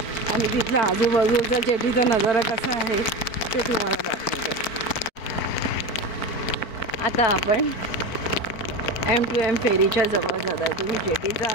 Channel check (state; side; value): late; right; 4.5 ms